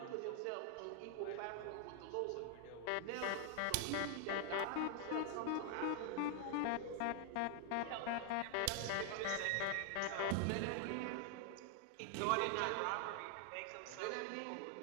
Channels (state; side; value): different; both; correlation 0.00